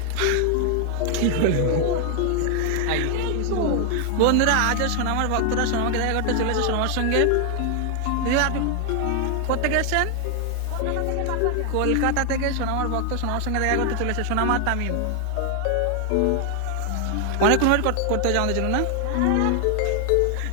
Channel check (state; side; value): different; both; correlation 0.00